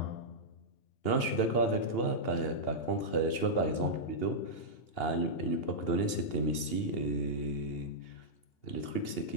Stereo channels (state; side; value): late; right; 2.8 ms